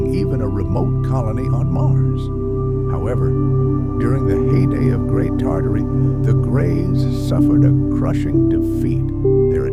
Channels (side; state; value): both; identical; correlation 1.00